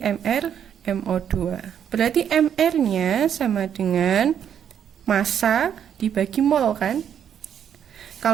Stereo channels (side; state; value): left; quieter; 8.9 dB